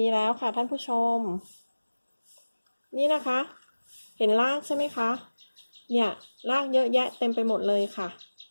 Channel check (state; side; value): inverted; both; correlation -1.00